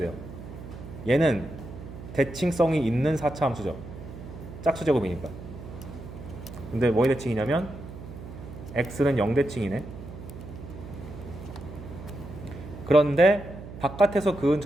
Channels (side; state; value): right; noise; hum, 12 dB below the sound